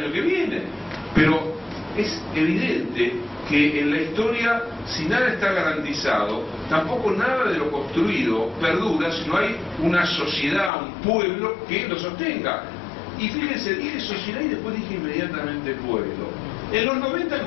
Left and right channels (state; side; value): drops out; right; at 10.7 s